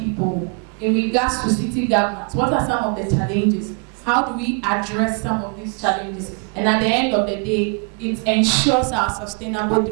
in regards to city governance. What are some of the challenges? How do we address some of these challenges? And at the end of the day, it ensures our sustainable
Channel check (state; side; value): quieter; left; 38.1 dB